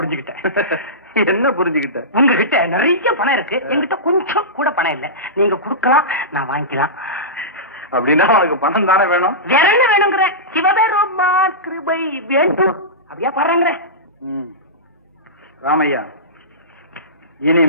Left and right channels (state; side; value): normal; both; correlation -0.18